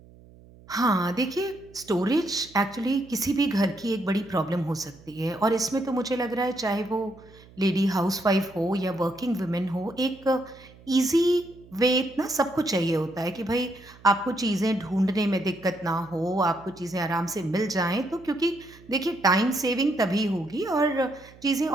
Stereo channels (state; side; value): noise; right; hum, 23 dB below the sound